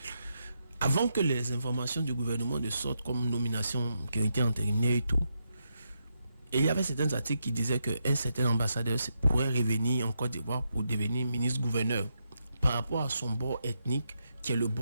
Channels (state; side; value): inverted; both; correlation -0.83